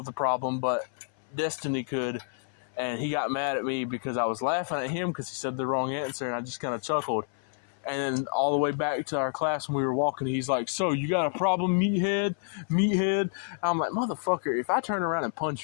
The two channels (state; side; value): silent; right; 59 dB below the other